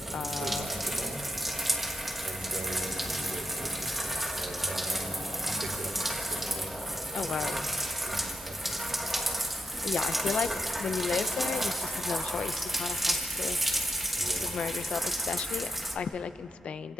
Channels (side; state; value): both; normal; correlation 0.83